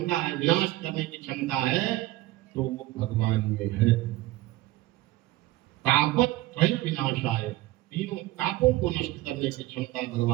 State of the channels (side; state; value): left; quieter; 17.0 dB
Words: है, विनाश करने की क्षमता है, तो वो भगवान में है। तापत त्रय विनाशाय, तीनों तापों को नष्ट करने की क्षमता